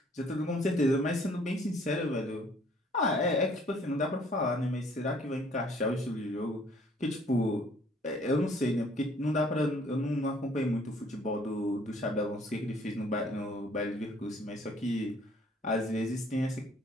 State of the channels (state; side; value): normal; both; correlation 0.59